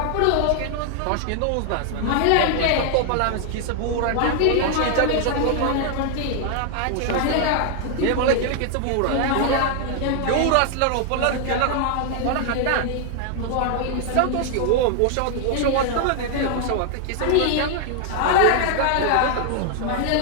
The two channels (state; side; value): different; both; correlation 0.00